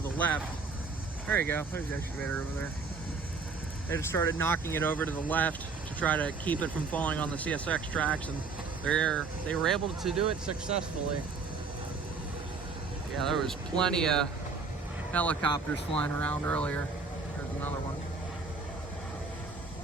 the left. There you go, there's the excavator over there. They just started knocking it over to the left to try to keep it from falling on the CSX tracks, and they were able to do it successfully. Yeah, there was plenty of helicopters flying around earlier. There's another one.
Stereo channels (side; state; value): left; quieter; 4.5 dB